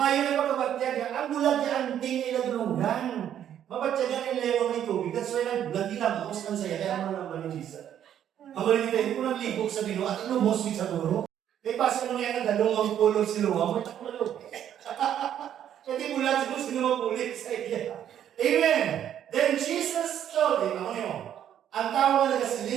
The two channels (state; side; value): quieter; left; 10.1 dB